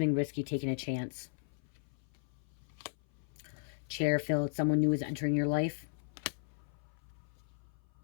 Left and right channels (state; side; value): silent; right; 53 dB below the other